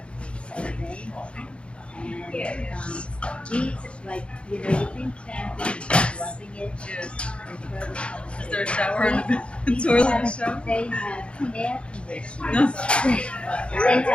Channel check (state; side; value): late; right; 0.058 ms